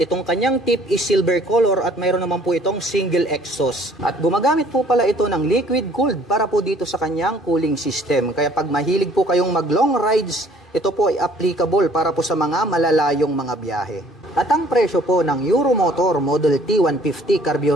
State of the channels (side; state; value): both; normal; correlation 0.57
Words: kanyang tip is silver color at mayroon naman po itong single exhaust. At gumagamit po pala ito ng liquid cooled para po dito sa kanyang cooling system. Kaya pag mahilig po kayong mag long rides, ito po ay applicable para po sa mga malalayong mga biyahe. At ang presyo po ng Euromotor Model T 150